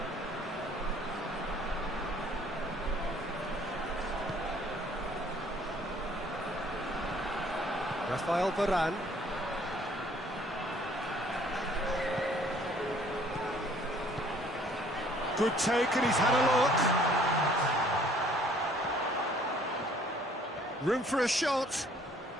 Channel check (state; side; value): normal; both; correlation 0.58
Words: Rafael Varane. Good take, and he's had a look. Room for a shot.